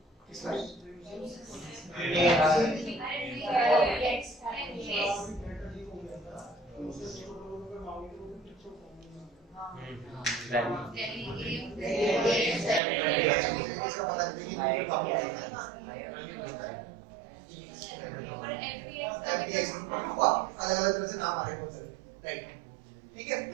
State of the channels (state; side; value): drops out; left; at 12.8 s